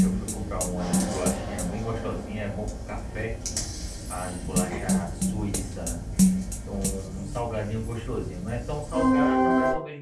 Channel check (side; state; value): both; identical; correlation 1.00